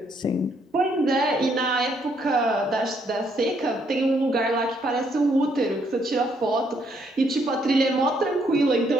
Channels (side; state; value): both; normal; correlation 0.71